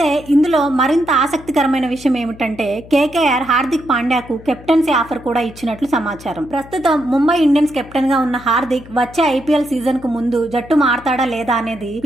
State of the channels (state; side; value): noise; left; hum, 19 dB below the sound